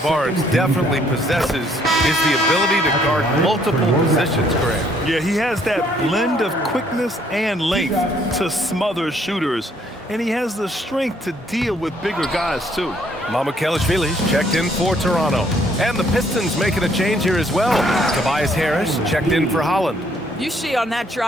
definitely possesses is the ability to guard multiple positions, Graham. Yeah, he has that blend of quickness and length to smother shooters. And he has the strength to deal with bigger guys, too. Mamukelashvili's checked in for Toronto. And the Pistons making a change here as well. Tobias Harris checked in for Holland. You see on that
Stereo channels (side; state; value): both; normal; correlation 0.66